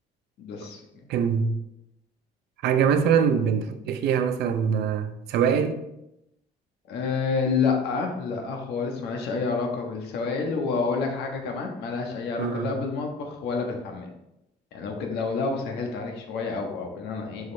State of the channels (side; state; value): both; normal; correlation 0.37